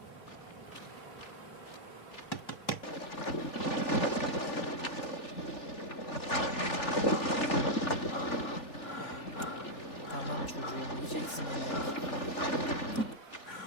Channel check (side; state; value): right; late; 3.4 ms